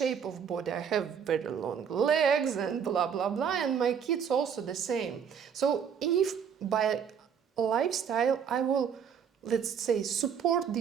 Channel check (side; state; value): left; quieter; 7.4 dB